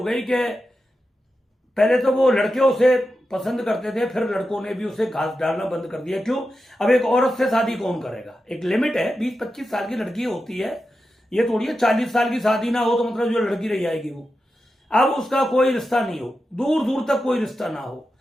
कि पहले तो वो लड़के उसे पसंद करते थे, फिर लड़कों ने भी उसे घास डालना बंद कर दिया। क्यों? अब एक औरत से शादी कौन करेगा? एक लिमिट है, 20-25 साल की लड़की होती है, ये थोड़ी है 40 साल की शादी ना हो तो मतलब जो लड़की रह जाएगी वो। अब उसका कोई रिश्ता नहीं हो, दूर दूर तक कोई रिश्ता ना हो।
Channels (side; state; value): both; normal; correlation 0.90